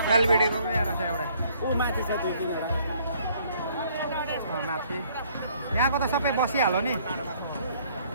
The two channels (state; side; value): inverted; both; correlation -0.62